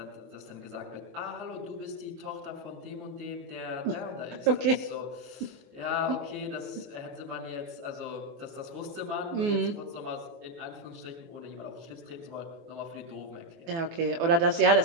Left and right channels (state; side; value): late; left; 24 ms